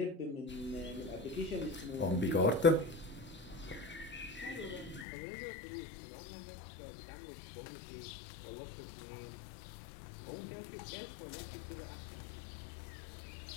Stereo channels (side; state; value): right; drops out; at 5.1 s